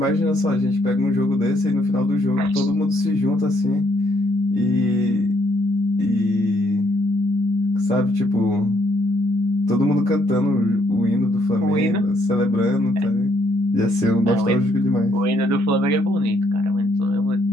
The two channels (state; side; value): normal; both; correlation 0.70